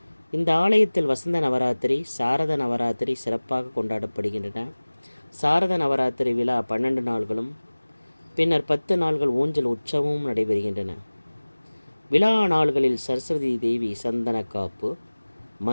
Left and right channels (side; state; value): both; inverted; correlation -1.00